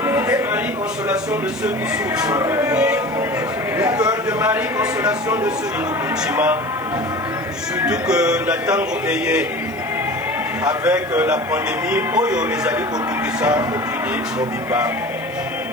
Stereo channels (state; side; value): noise; left; hiss, 26 dB below the sound